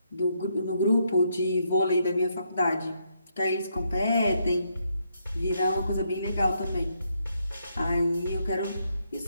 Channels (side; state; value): both; inverted; correlation -0.76